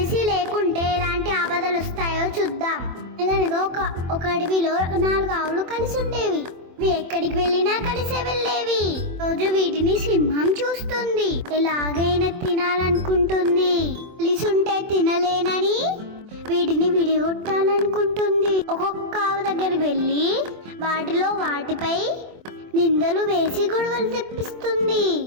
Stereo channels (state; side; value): late; left; 24 ms